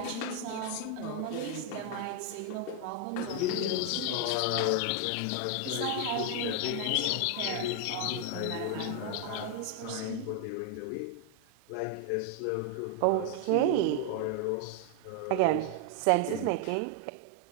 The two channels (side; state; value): both; different; correlation 0.00